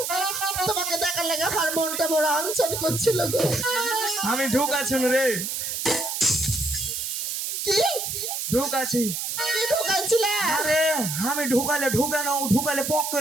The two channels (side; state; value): right; noise; hiss, 3 dB below the sound